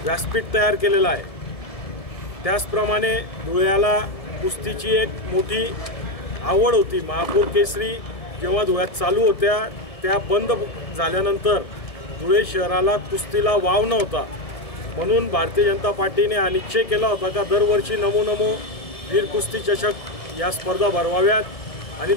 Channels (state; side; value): late; right; 1.7 ms